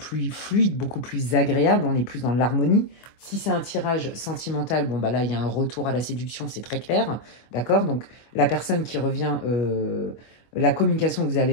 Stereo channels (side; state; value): right; late; 25 ms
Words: fluide, beaucoup plus agréable. On est plus dans l'harmonie. Si c'est un tirage sentimental, bon, bah là, il y a un retour à la séduction, c'est très clair. D'accord? Donc, la personne qui revient, la communication que